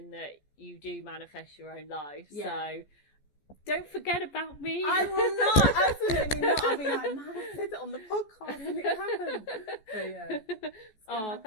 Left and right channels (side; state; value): right; late; 14 ms